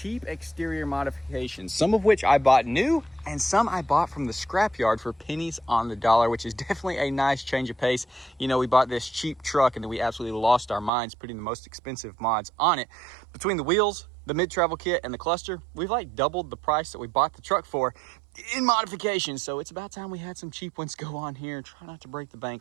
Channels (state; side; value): drops out; left; at 10.9 s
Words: exterior modifications, some of which I bought new and some I bought from the scrapyard for pennies on the dollar, which is definitely a nice change of pace. You know, we bought this cheap truck and then we absolutely lost our minds putting the most expensive mods on it. Between the wheels, the mid-travel kit, and the cluster, we've like doubled the price that we bought the truck for in modification. So it's about time we had some cheap ones go on here and try not to break the